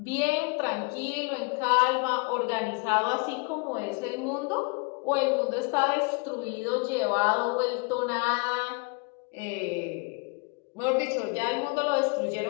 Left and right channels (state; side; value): quieter; right; 31.5 dB